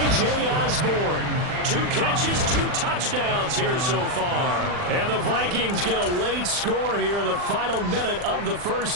Osborne. 2 catches, 2 touchdowns here so far. And the Vikings get a late score here in the final minute of the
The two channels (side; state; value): left; late; 40 ms